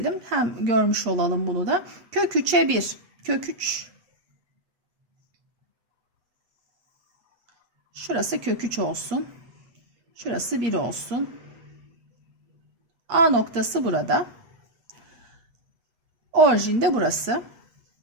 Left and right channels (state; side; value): late; left; 8.2 ms